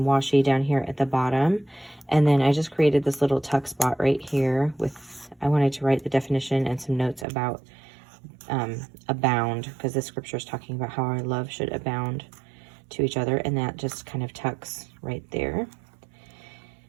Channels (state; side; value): drops out; left; at 7.2 s